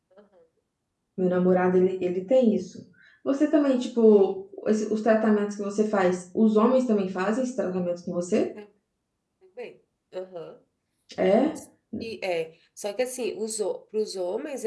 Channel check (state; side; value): identical; both; correlation 1.00